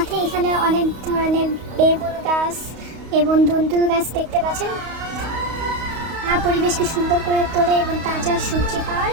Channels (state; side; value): late; left; 32 ms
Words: এখানে অনেক ধরনের বেগুন গাছ এবং দুন্দুল গাছ দেখতে পাচ্ছেন। পরিবেশকে সুন্দর করে তোলে এবং তাজা সবজি পাওয়ার